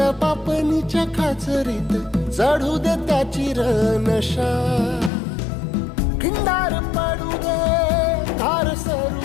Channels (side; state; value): right; drops out; at 5.1 s